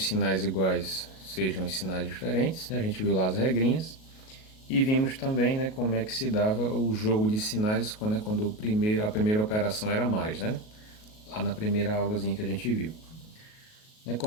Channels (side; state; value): right; late; 37 ms